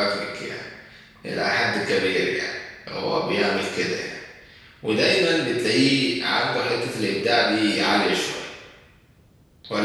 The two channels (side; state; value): both; identical; correlation 1.00